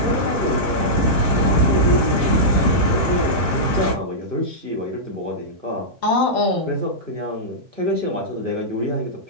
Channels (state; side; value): late; left; 1.1 ms